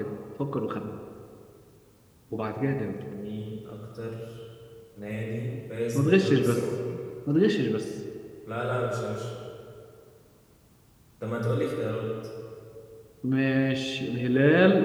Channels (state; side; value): identical; both; correlation 1.00